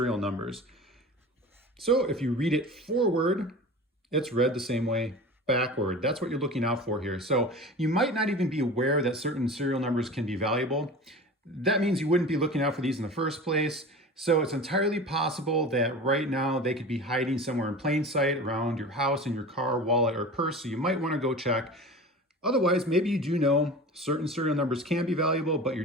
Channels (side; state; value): both; normal; correlation 0.35